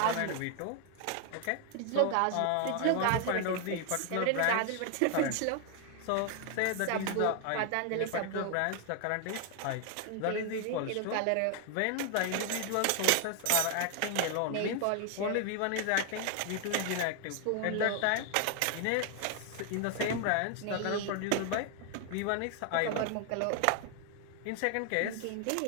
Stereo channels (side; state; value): both; different; correlation 0.00